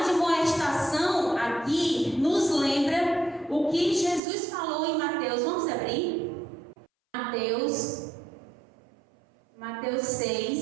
admoestação aqui nos lembra o que Jesus falou em Mateus. Vamos abrir? Mateus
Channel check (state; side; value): drops out; left; at 4.2 s